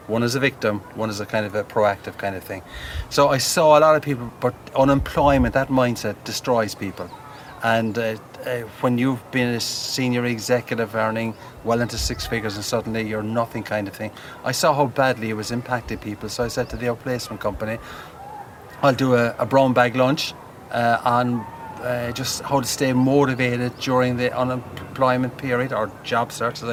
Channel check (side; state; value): both; identical; correlation 1.00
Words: One is a victim, one is a kind of a proactive kind of thing. So I saw a lot of people, but unemployment, that mindset destroys people. And when you've been a senior executive earning well into 6 figures and suddenly you're nothing kind of thing, I saw how badly it was impacting people. So I said to the outplacement company, I'll do a brown bag lunch on just how to stay motivated during the unemployment period or job search, as